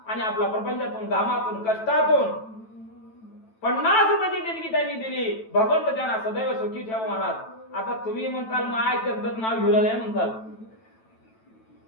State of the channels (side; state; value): right; late; 9.1 ms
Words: आणि आपला प्रपंचातून घामातून कष्टातून 50 रुपयाची देणगी त्यांनी दिली. भगवंत त्यांना सदैव सुखी ठेवा महाराज. आता तुम्ही म्हणताल माय त्यांचं नाव घेऊ लागले म्हणताल,